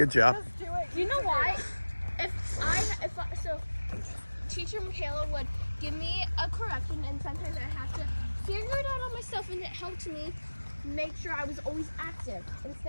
job. Just do it. Do you know why? So teacher Michaela would give me a correction, and sometimes I have to figure it out on myself, and it helped me make sure I was always active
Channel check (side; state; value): both; inverted; correlation -1.00